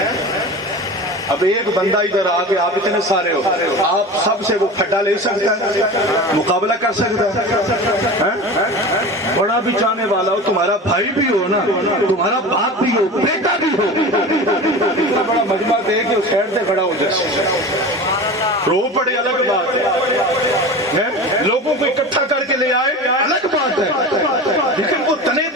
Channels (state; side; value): normal; both; correlation 0.32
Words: اب ایک بندہ ادھر آگے، آپ اتنے سارے ہو، آپ سب سے وہ پھٹا لے سکتا ہے، مقابلہ کر سکتا ہے؟ بڑا بھی چاہنے والا ہو، تمہارا بھائی بھی ہو نا، تمہارا باپ بھی ہو، بیٹا بھی ہو، اتنا بڑا مجمع دے کے اس سائڈ سے کھڑا ہو جیسے رو پڑے الگ بات ہے، لوگوں کو اکٹھا کر کے لے آئے الگ بات ہے، لیکن وہ تنے